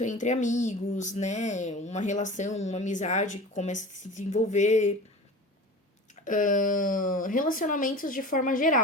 entre amigos, né? Uma relação, uma amizade que começa a se desenvolver. Relacionamentos de forma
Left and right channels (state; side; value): normal; both; correlation 0.35